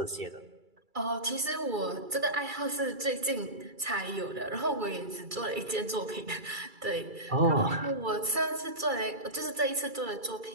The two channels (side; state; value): left; late; 2.3 ms